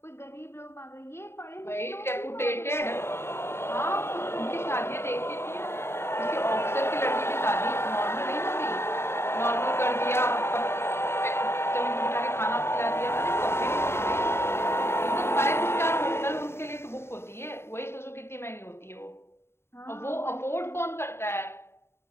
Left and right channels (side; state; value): right; late; 0.12 ms